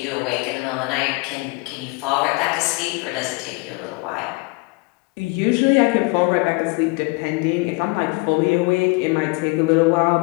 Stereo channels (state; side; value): quieter; right; 27.1 dB